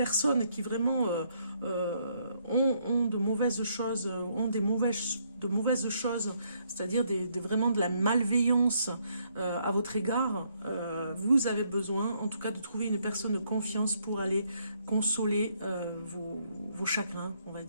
qui vraiment ont de mauvaises choses, ont de mauvaises choses, c'est-à-dire vraiment de la malveillance à votre égard, vous avez besoin en tout cas de trouver une personne de confiance pour aller consoler vos chagrins, on va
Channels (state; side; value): inverted; both; correlation -0.72